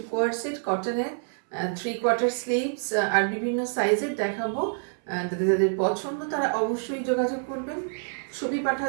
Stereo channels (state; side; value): silent; left; 60 dB below the other